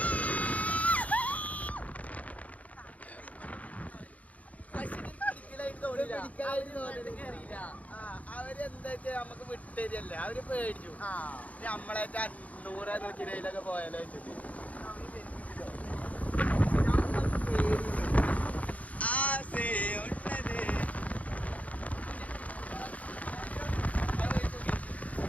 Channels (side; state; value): right; late; 0.069 ms